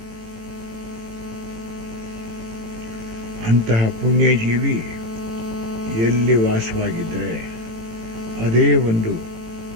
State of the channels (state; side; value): late; left; 18 ms